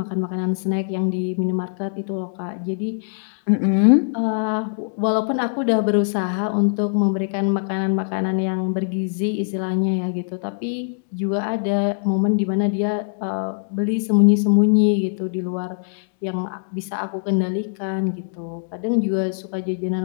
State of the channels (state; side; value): silent; right; digital silence